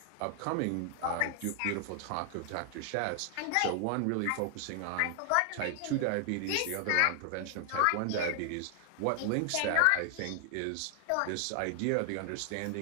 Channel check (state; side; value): different; both; correlation 0.00